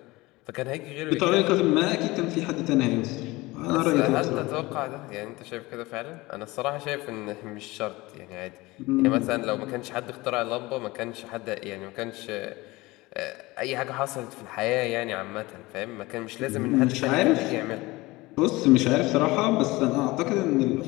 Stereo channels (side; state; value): right; quieter; 21.0 dB